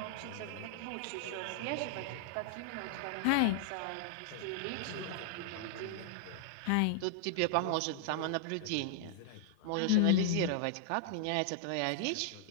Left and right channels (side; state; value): both; different; correlation -0.01